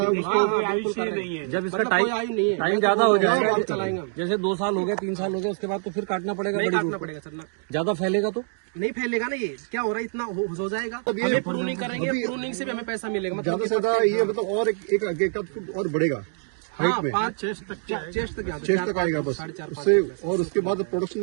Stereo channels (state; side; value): silent; left; digital silence